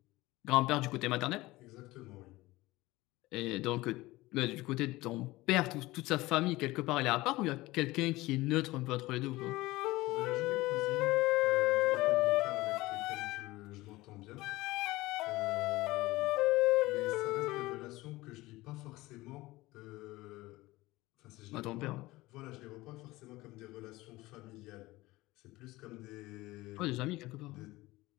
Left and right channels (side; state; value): right; quieter; 19.5 dB